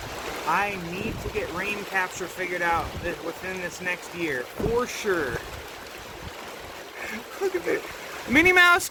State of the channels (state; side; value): identical; both; correlation 1.00